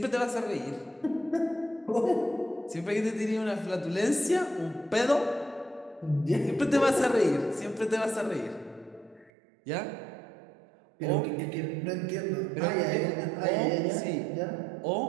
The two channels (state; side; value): drops out; left; at 9.3 s